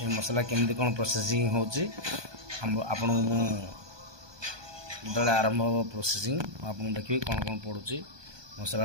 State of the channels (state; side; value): late; left; 1.2 ms